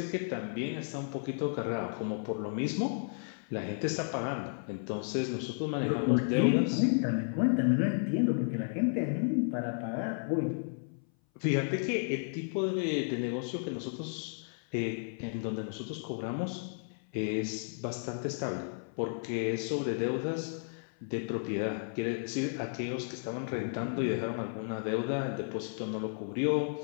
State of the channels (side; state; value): right; silent; 56 dB below the other